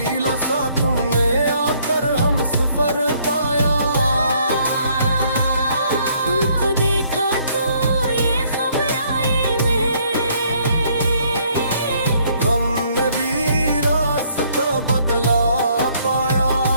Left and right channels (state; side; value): inverted; both; correlation -0.66